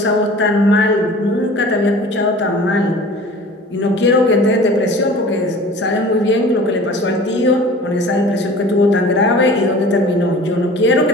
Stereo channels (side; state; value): both; normal; correlation 0.43